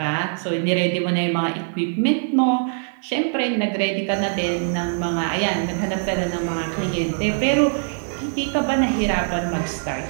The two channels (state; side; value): silent; left; 64 dB below the other